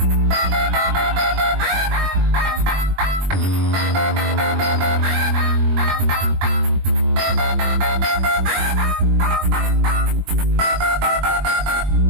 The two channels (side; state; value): left; late; 21 ms